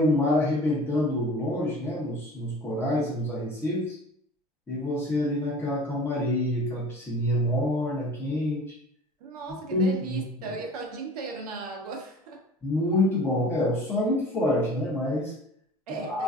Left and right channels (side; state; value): both; normal; correlation 0.43